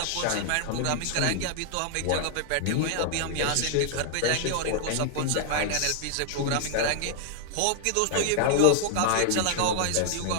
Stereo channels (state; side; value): different; both; correlation 0.00